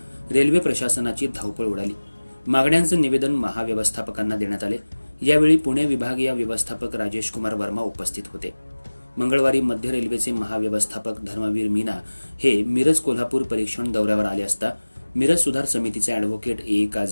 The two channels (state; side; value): inverted; both; correlation -1.00